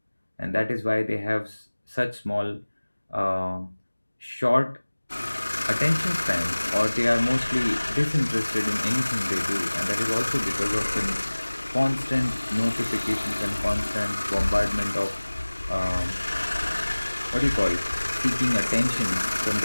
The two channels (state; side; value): inverted; both; correlation -1.00